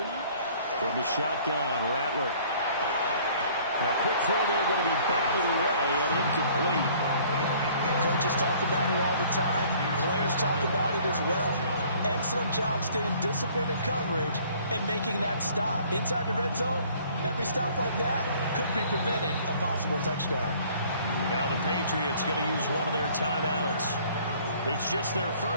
From the shotgun, Rattler. Now, quick throw there, going to be batted away and incomplete. Coaches talk about it all the time. Players talk about it as well. Excellent job staying disciplined in coverage and making that stop. Inside the red zone, every stop like that could be preventing a possible touchdown. Now the Patriots going to use one of their timeouts. It's just their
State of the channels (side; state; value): both; inverted; correlation -0.55